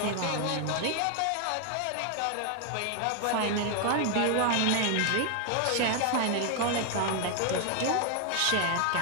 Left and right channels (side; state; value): both; different; correlation 0.01